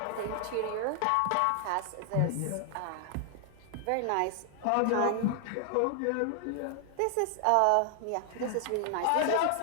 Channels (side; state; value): both; different; correlation 0.00